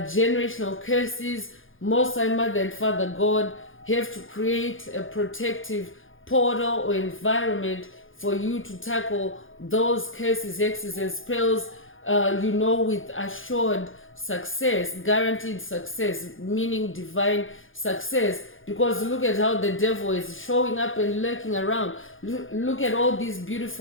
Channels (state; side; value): late; right; 0.58 ms